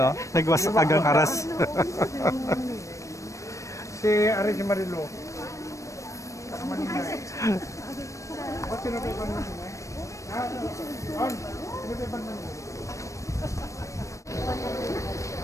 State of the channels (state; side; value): late; right; 0.15 ms